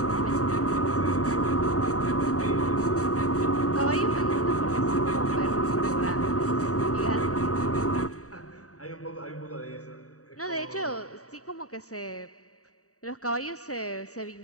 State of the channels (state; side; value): late; right; 0.66 ms